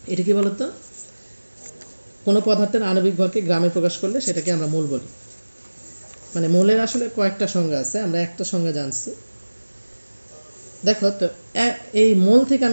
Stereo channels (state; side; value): inverted; both; correlation -1.00